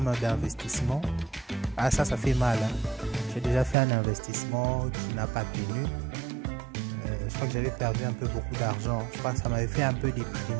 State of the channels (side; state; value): left; drops out; at 3.8 s